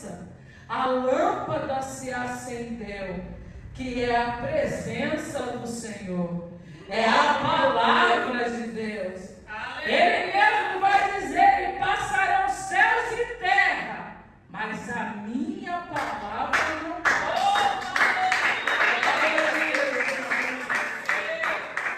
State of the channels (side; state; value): both; identical; correlation 1.00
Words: a lâmpada se acendeu, que é a presença do Senhor, é a palavra de Deus. Ele mesmo vai dizer: e passarão céus e terra, mas a minha palavra não pode.